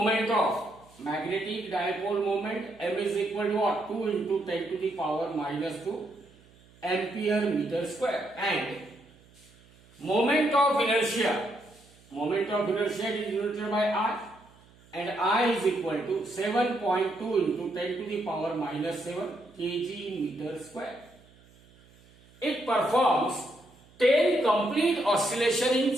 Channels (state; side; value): noise; right; hum, 27 dB below the sound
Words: of magnetic dipole moment m is equal to what? 2 into 10 to the power minus 2 ampere meter square, and moment of inertia is denoted by I, and I is equal to 7.2 into 10 to the power minus 7 kg meter square. It performs 10 complete oscillation in